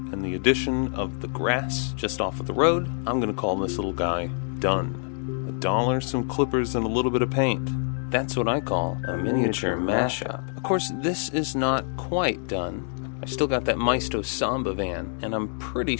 the addition of the grass just off of the road, I'm going to call this little guy done. $1, some clippers, and a little bit of paint. That's what I call a miniature mashup. Of course, this is not quite done. I still got that Maisto Samba van, and I'm pretty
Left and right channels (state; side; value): silent; right; 61 dB below the other